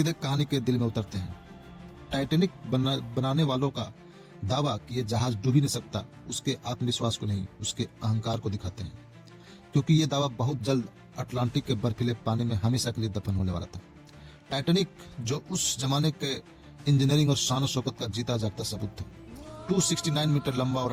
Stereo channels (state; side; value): identical; both; correlation 1.00